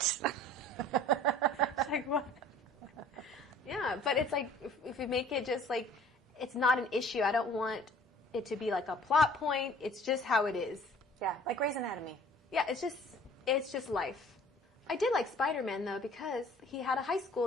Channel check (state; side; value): normal; both; correlation 0.51